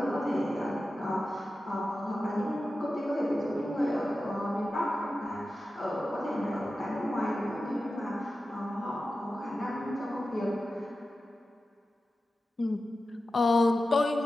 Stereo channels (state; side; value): normal; both; correlation 0.93